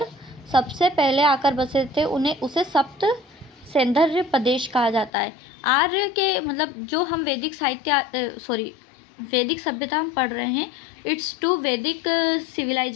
सबसे पहले आकर बसे थे उसे सप्त सैंधर्य प्रदेश कहा जाता है। आर्य के मतलब जो हम वैदिक सभ्यता हम पढ़ रहे हैं, इट्स टू वैदिक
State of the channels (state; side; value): drops out; right; at 5.1 s